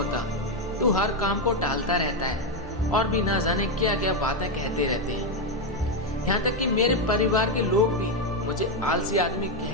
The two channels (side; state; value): both; normal; correlation 0.06